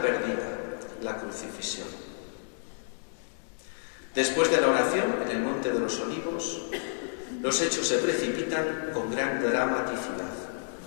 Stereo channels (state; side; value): silent; right; digital silence